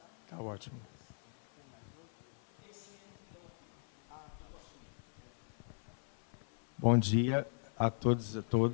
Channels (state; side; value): silent; right; 52 dB below the other